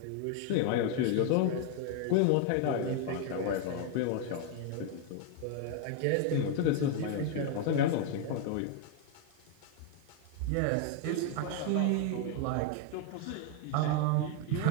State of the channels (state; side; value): different; both; correlation 0.00